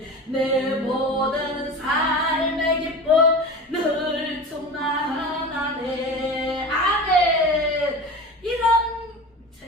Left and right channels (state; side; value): normal; both; correlation 0.31